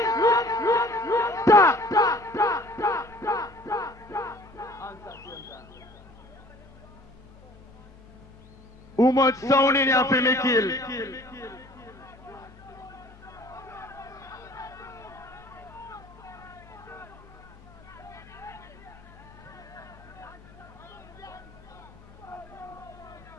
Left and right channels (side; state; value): left; noise; hum, 23 dB below the sound